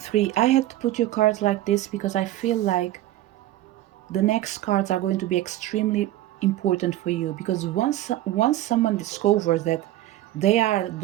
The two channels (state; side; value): quieter; left; 14.7 dB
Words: 3, I had to put your cards like this because I feel like the next cards are going to be extremely important for you, because once someone discovers that they are